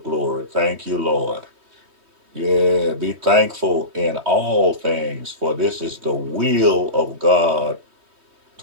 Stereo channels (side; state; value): left; late; 3.2 ms